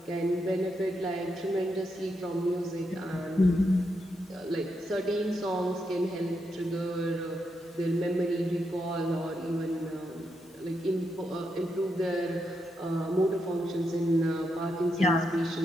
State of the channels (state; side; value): normal; both; correlation 0.83